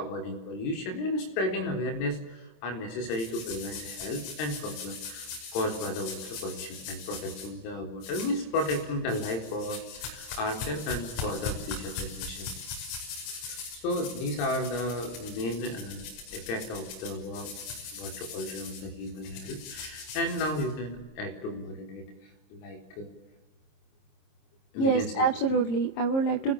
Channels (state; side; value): late; right; 27 ms